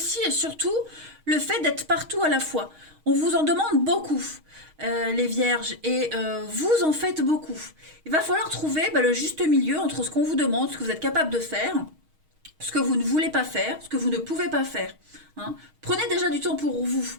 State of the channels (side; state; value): left; late; 6.4 ms